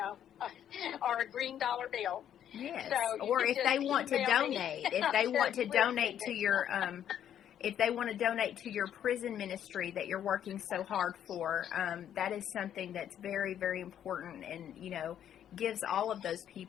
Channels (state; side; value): quieter; right; 10.0 dB